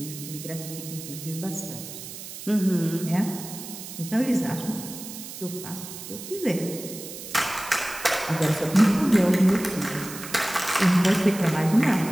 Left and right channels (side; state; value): right; noise; hiss, 11 dB below the sound